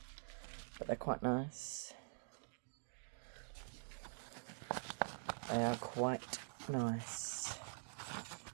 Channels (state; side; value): silent; left; digital silence